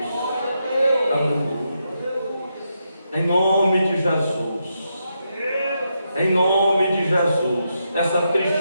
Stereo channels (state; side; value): inverted; both; correlation -0.83